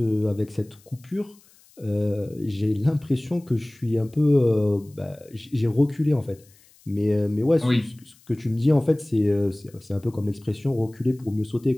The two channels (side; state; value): left; noise; hiss, 29 dB below the sound